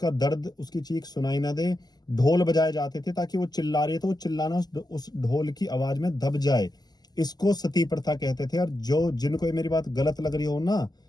दर्द उसकी चीख सुनाई ना दे। ढोल बजाए जाते थे ताकि वो चिल्ला रही है तो वो चिल्लाना उस ढोल की आवाज में दब जाए। इसको सती प्रथा कहते थे। और जो जिनको ये मेरी बात गलत लग रही हो ना,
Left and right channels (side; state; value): right; late; 0.20 ms